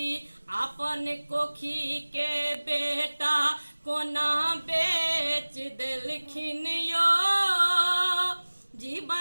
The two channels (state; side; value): inverted; both; correlation -1.00